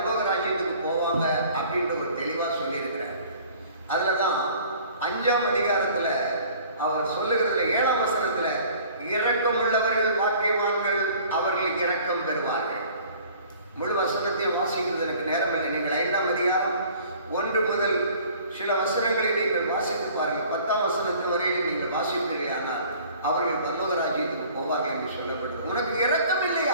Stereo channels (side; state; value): both; inverted; correlation -0.50